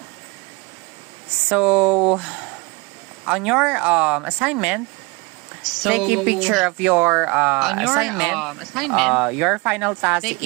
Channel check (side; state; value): left; quieter; 25.8 dB